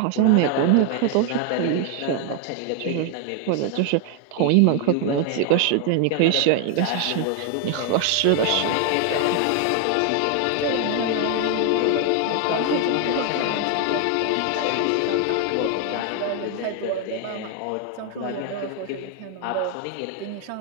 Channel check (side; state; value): both; different; correlation 0.01